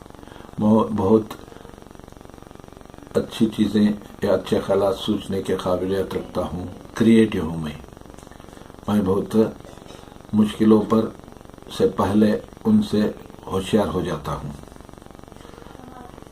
بہت اچھی چیزیں یا اچھے خیالات سوچنے کے قابلیت رکھتا ہوں، کریٹو ہوں میں بہت مشکلوں پر سے پہلے ان سے ہوشیار ہو جاتا ہوں،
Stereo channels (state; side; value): identical; both; correlation 1.00